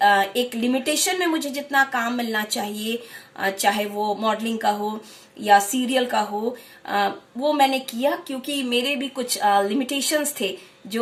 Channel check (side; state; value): both; identical; correlation 1.00